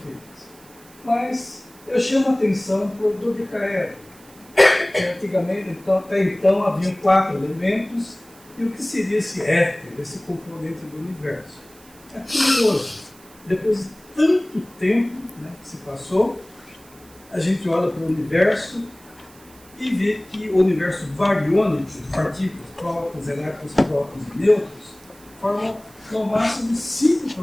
Mas eu chamo a atenção para o dodecaedro. Antigamente, até então, haviam 4 elementos, e o que seria esse éter, esse componente do universo? É curioso. Depois de tanto tempo, né, que se passou, a gente olha para o universo e vê que o universo bariônico, de partículas, prótons, elétrons, prótons e nêutrons, formam no máximo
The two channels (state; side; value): noise; right; hiss, 25 dB below the sound